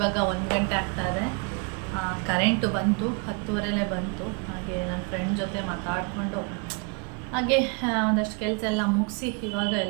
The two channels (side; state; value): left; quieter; 33.9 dB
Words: 1 ಗಂಟೆ ಆಗ್ತಾಯಿದೆ. ಕರೆಂಟು ಬಂತು, 10:30 ಬಂತು. ಹಾಗೆ ನನ್ನ ಫ್ರೆಂಡ್ ಜೊತೆ ಮಾತಾಡಿಕೊಂಡು ಹಾಗೆ ಒಂದಷ್ಟು ಕೆಲಸ ಎಲ್ಲ ಮುಗಿಸಿ ಇವಾಗ